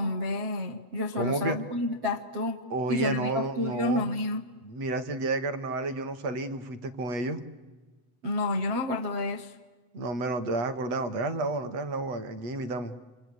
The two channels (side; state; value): left; late; 7.9 ms